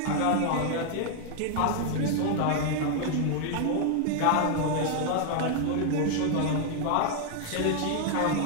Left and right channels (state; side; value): different; both; correlation 0.00